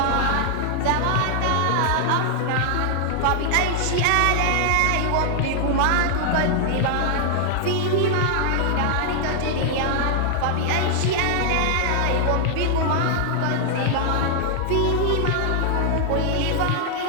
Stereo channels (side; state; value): both; different; correlation 0.00